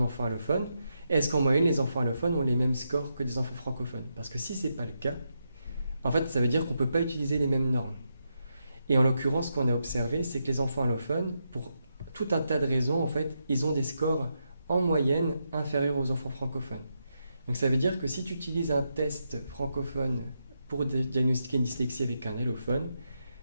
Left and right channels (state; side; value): inverted; both; correlation -0.83